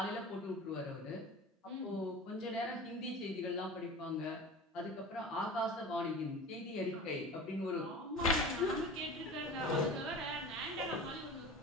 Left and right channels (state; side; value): normal; both; correlation 0.35